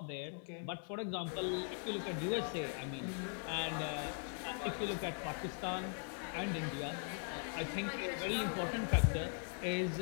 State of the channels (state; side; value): silent; right; 51 dB below the other